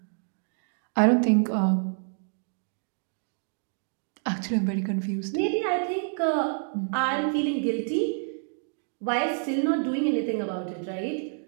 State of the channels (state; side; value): silent; left; 59 dB below the other